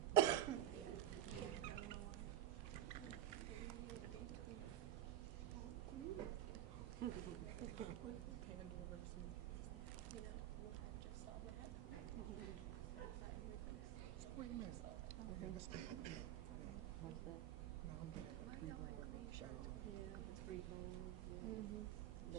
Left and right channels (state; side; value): quieter; left; 12.0 dB